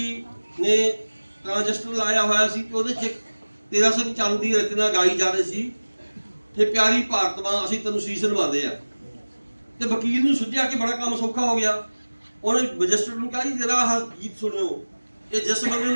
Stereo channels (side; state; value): both; inverted; correlation -1.00